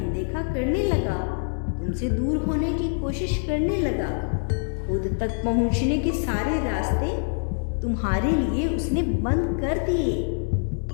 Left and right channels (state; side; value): silent; right; digital silence